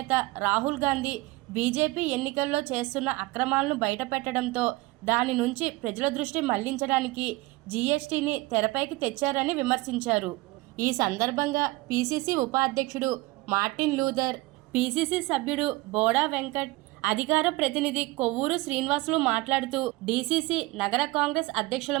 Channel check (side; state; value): left; quieter; 21.0 dB